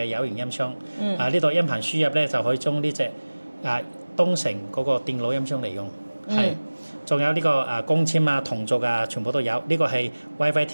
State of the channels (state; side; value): inverted; both; correlation -1.00